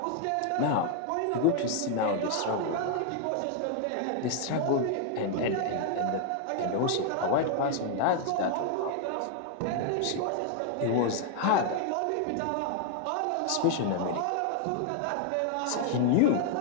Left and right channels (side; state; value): both; different; correlation 0.00